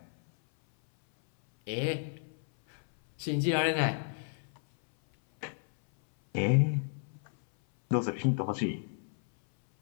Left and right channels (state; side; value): silent; right; 57 dB below the other